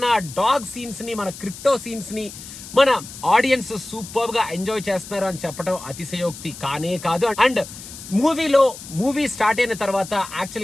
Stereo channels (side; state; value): left; noise; hiss, 14 dB below the sound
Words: ఆ డాగ్ సీన్స్ ని, మన క్రిప్టో సీన్స్ ని మన ఆడియన్స్ సూపర్ గా ఎంజాయ్ చేస్తున్నారు అని చెప్పడం అతిశయోక్తి కానే కాదు. అండ్ మూవీ స్టార్ట్ అయిన తర్వాత